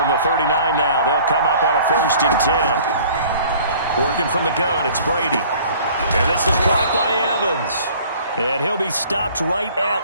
the 39 now, they'll come up on a 1st and 10. Working from the gun, it's Brady. And this is caught by Evans. And he'll be stopped right at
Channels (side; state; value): both; inverted; correlation -0.51